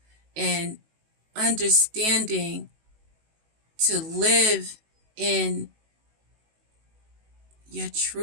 and understanding to live in your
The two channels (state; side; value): late; left; 19 ms